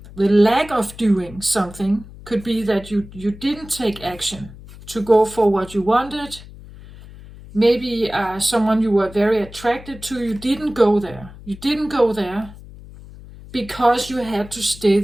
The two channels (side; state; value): left; noise; hum, 17 dB below the sound